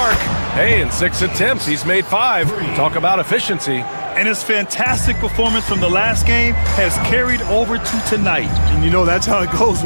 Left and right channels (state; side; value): inverted; both; correlation -1.00